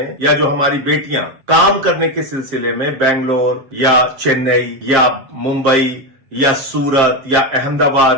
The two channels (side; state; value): left; late; 7.5 ms